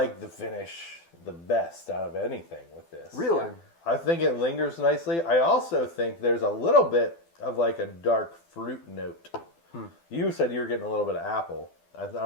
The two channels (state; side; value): late; right; 12 ms